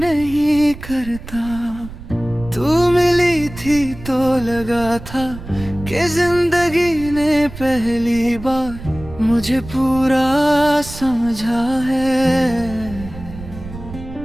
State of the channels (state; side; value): noise; right; rumble, 14 dB below the sound